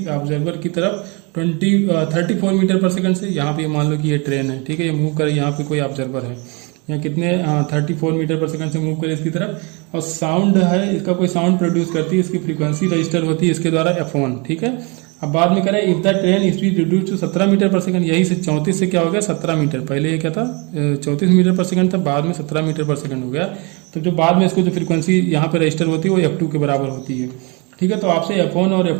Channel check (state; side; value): quieter; left; 30.4 dB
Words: ऑब्जर्वर की तरफ 34 मीटर पर सेकंड से। यहाँ पे मान लो कि ये ट्रेन है। ठीक है, ये मूव करे, यहाँ पे कोई ऑब्जर्वर है, यहाँ कितने 34 मीटर पर सेकंड से मूव करे इसकी तरफ, और साउंड है, इसका कोई साउंड प्रोड्यूस करती है, इसकी फ्रीक्वेंसी रजिस्टर होती है इसके द्वारा f1। ठीक है, अब बाद में करें if the train speed reduce to 17 metre per second, यही से 34 से क्या हो गया 17 मीटर, पहले ये क्या था 34 मीटर पर सेकंड था, बाद में 17 मीटर पर सेकंड हो गया। तो जो बाद में इसको जो फ्रीक्वेंसी यहाँ पे रजिस्टर होती है वो f2 के बराबर होती है। ठीक है, तो आपसे f1 और